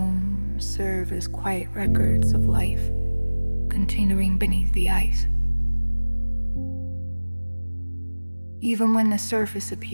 serve as quiet records of life continuing beneath the ice. Even when the surface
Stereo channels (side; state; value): both; inverted; correlation -1.00